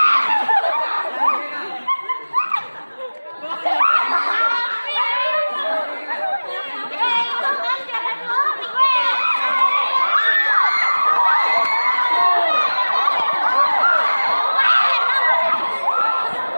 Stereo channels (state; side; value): inverted; both; correlation -1.00